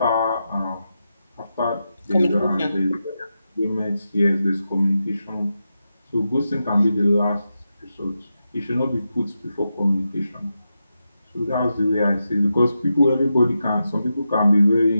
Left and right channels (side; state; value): both; inverted; correlation -0.88